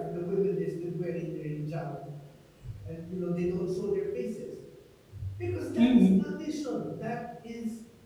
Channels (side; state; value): both; identical; correlation 1.00